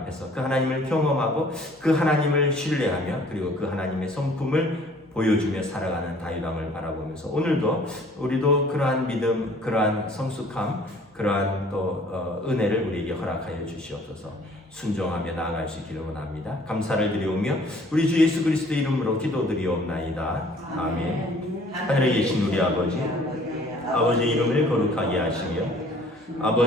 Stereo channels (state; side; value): normal; both; correlation 0.55